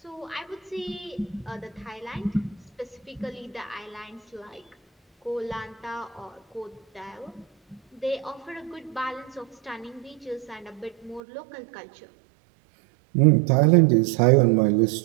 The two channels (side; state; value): left; drops out; at 11.2 s